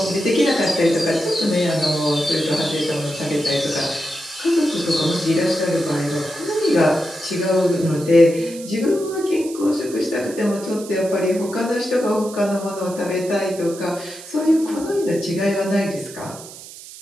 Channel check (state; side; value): noise; right; hiss, 16 dB below the sound